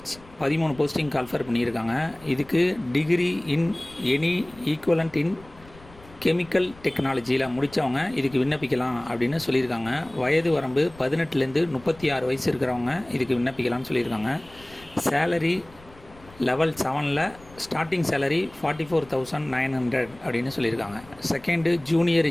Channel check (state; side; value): noise; left; rumble, 23 dB below the sound